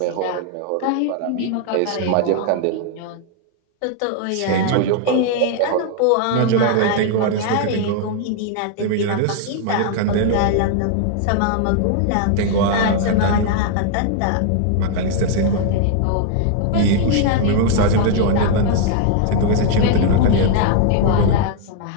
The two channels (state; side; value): different; both; correlation 0.00